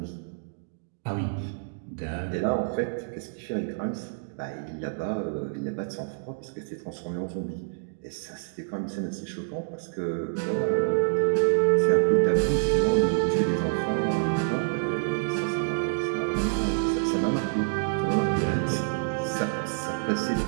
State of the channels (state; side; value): silent; left; digital silence